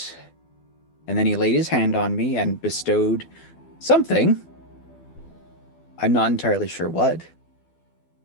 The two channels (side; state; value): right; late; 12 ms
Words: And then he laid his hand on me and bestowed something. I'm not entirely sure what.